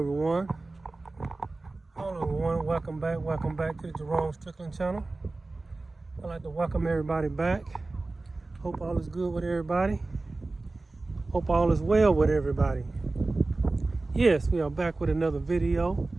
Hello everyone. Welcome back to the Jerome Strickland channel. I'd like to welcome everybody back. Hope all is good with everybody. Hope all is well with everybody. Yes, we are back with another video.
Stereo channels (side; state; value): left; quieter; 3.3 dB